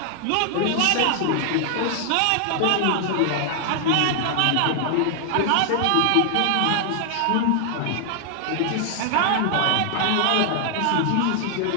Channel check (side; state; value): both; different; correlation 0.00